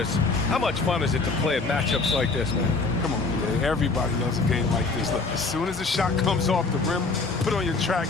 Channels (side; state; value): right; quieter; 3.9 dB